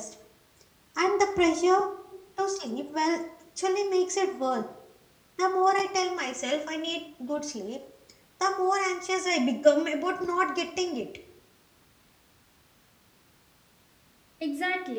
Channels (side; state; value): both; identical; correlation 1.00